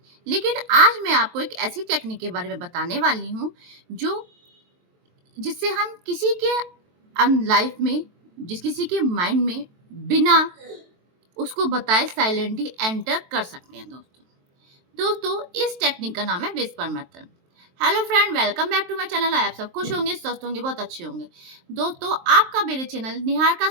लेकिन आज मैं आपको एक ऐसी टेक्निक के बारे में बताने वाली हूँ, जो जिससे हम किसी के लाइफ में, किसी के माइंड में बिना उसको बताए साइलेंटली एंटर कर सकते हैं दोस्तों। इस टेक्निक का नाम है whisper method. Hello friend, welcome back to my channel. आप सब खुश होंगे, स्वस्थ होंगे, बहुत अच्छे होंगे। दोस्तों, आपका मेरे चैनल निहार का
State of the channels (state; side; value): late; left; 23 ms